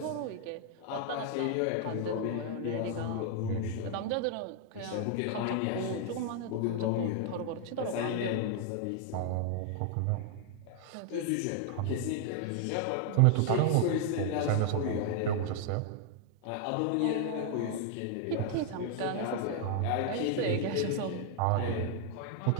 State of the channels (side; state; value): both; different; correlation 0.00